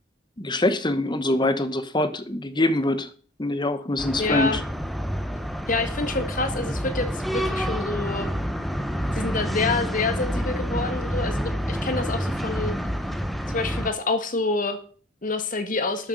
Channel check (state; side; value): normal; both; correlation 0.51